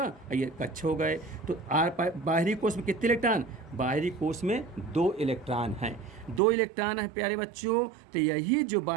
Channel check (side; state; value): left; drops out; at 6.4 s